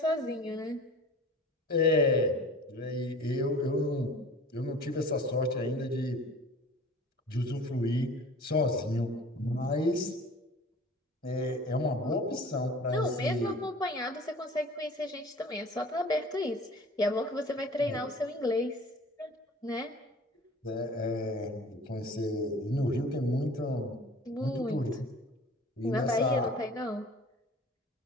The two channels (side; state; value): both; normal; correlation 0.44